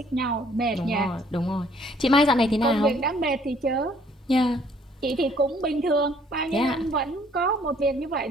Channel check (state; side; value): normal; both; correlation 0.61